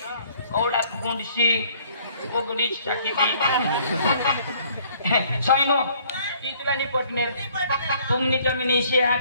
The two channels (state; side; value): inverted; both; correlation -0.60